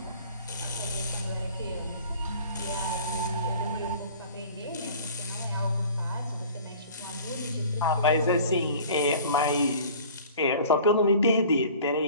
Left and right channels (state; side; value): inverted; both; correlation -0.46